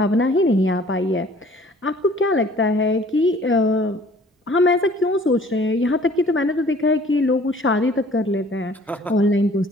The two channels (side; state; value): both; normal; correlation 0.53